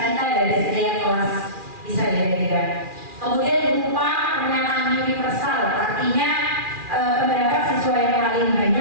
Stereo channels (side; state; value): left; late; 2.4 ms